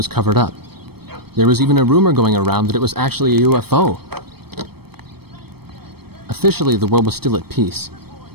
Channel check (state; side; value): late; left; 0.96 ms